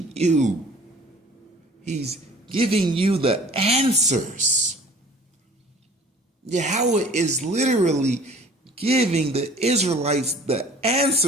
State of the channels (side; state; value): both; normal; correlation 0.49